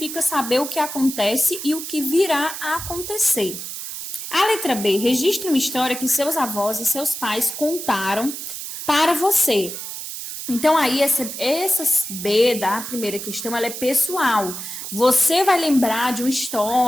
saber o que acontece e o que virá a acontecer. A letra B, registre uma história que seus avós e seus pais contaram para você. Então, aí, essa B da primeira questão, ela é pessoal. Você vai lembrar de uma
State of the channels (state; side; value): noise; right; hiss, 8 dB below the sound